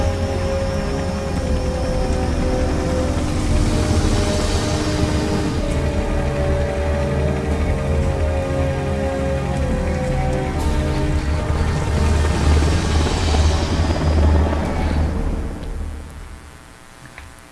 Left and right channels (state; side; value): identical; both; correlation 1.00